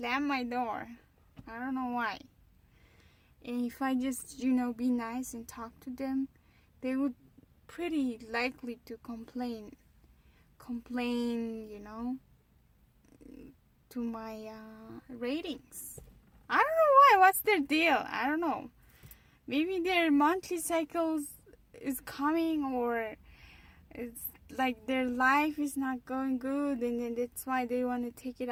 my door. I don't know why. And if I just be nice and talk to them, they would pretty likely to complain to my ratings. I don't know why. What's their deal? I don't know. Maybe their monthly cycles is coming, or it's like their life is not going good, and then that's why they want to take it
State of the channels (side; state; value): both; identical; correlation 1.00